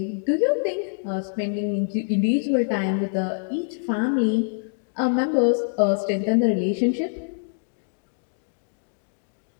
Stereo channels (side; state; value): right; silent; digital silence